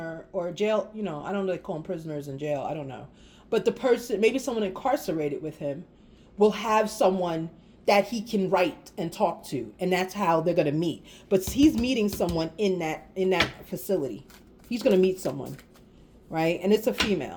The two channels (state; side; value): identical; both; correlation 1.00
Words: or a jail. You know, I don't know if they call them prisoners in jail. I don't know. But the person, maybe someone incarcerated with him, will have someone that he can write and talk to. And that's how they're going to meet. But he's meeting someone in that facility. He's going to meet someone. Right? And it's a